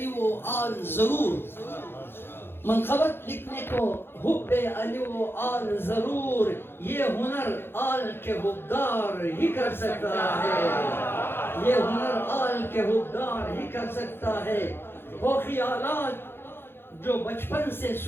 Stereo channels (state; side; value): late; right; 0.11 ms